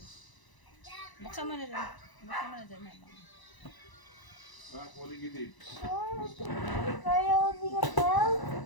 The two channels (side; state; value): right; late; 1.0 ms